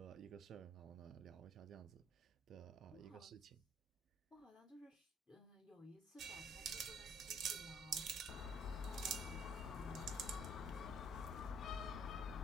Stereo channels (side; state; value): both; normal; correlation 0.62